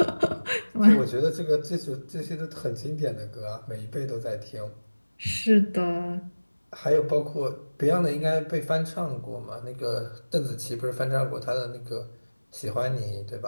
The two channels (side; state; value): both; inverted; correlation -1.00